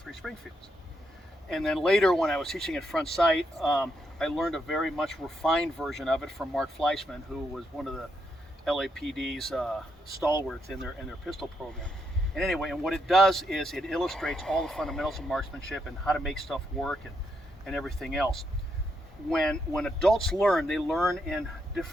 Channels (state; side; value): normal; both; correlation 0.79